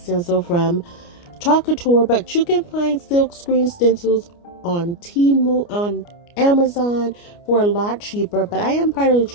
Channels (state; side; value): late; right; 29 ms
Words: from Chalk Couture, but you can find silk screen stencils on Amazon for a lot cheaper, but I am part of the